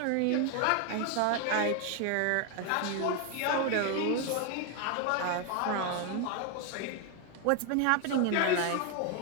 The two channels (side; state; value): both; different; correlation 0.01